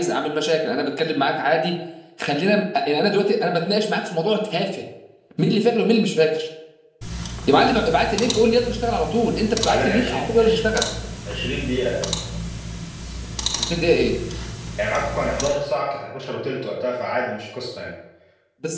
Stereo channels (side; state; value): both; identical; correlation 1.00